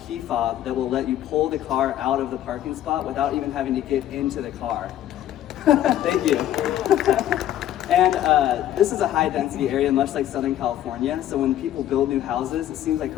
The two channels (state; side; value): quieter; right; 12.3 dB